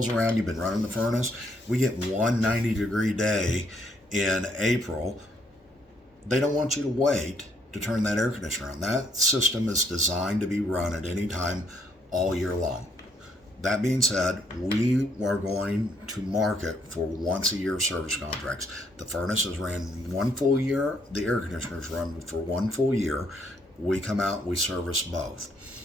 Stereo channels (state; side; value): normal; both; correlation 0.70